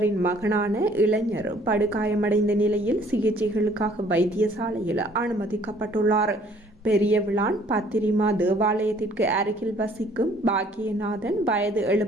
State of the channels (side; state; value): both; normal; correlation 0.58